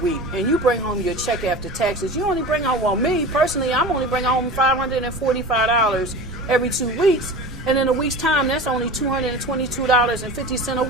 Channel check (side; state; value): right; noise; rumble, 15 dB below the sound